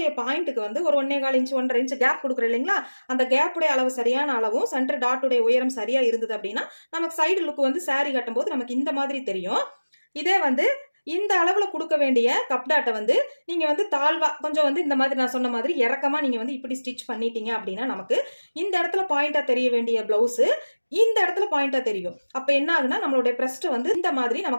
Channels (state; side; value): inverted; both; correlation -1.00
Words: பாயிண்ட்டுக்கு வந்து ஒரு 1.25 இன்ச் 1.5 இன்ச் கேப் கொடுக்குறோம் இல்லைங்களா, அந்த கேப்புடைய அளவு சரியான அளவும் சென்டர் டாட்டுடைய உயரம் சரியா இருந்தது அப்படின்னா நமக்கு சைடு லுக் வந்து சாரி கட்டும் போது நமக்கு இந்த மாதிரி தெரியும். இதே வந்து இந்த அளவுல கொடுக்க வேண்டிய கப் டாட்டை வந்து நீங்க வந்து தாழ்வா கொஞ்சம் வந்து இந்த மாதிரி நான் சொன்ன மாதிரி இறக்கமா நீங்க வந்து இப்படி ஸ்டிச் பண்ணிட்டீங்க அப்படின்னா நமக்கு இந்த இடத்துல பாயிண்டா தெரிய வேண்டிய பிளவுஸ் இந்த இடத்துல பாயிண்டா தெரியும். அப்ப என்ன ஆகுனா நம்மளுடைய பிரஸ்ட் வந்து இந்த மாதிரி